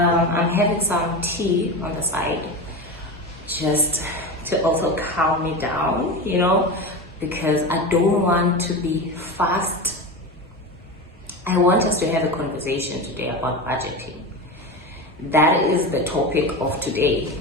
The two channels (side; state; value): both; normal; correlation 0.23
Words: having some tea on the side, just to also calm me down, because I don't want to be fast. I want us to have a conversation today about budgeting. That is the topic of today,